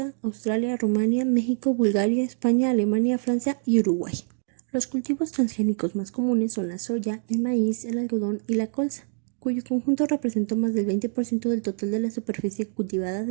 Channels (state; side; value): silent; left; digital silence